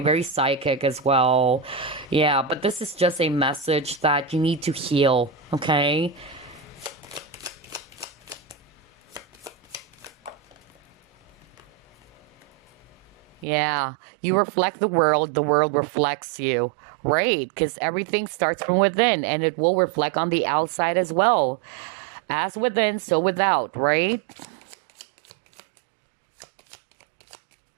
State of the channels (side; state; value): left; drops out; at 13.5 s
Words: Very psychic as well. Yeah, but this is just a message that you need to heal, okay? Yeah, you reflect the world reflects you, right? Because everything starts from within, and it will reflect on the outside as well. As within, so without, right?